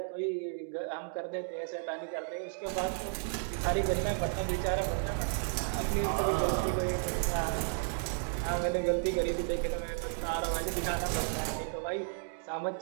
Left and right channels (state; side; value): silent; left; digital silence